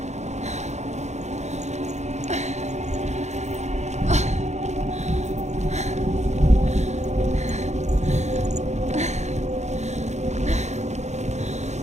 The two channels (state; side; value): late; left; 0.33 ms